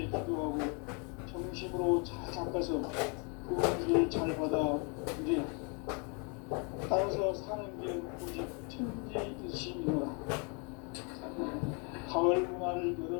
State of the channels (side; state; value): right; quieter; 34.7 dB